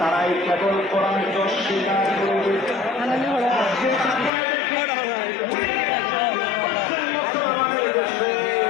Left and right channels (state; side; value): drops out; right; at 4.3 s